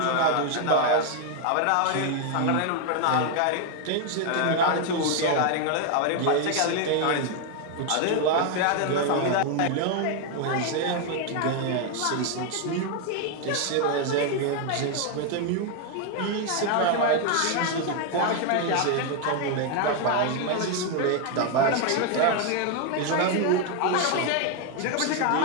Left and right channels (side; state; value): both; different; correlation 0.01